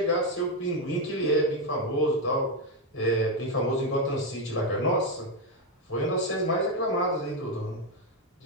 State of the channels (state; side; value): normal; both; correlation 0.06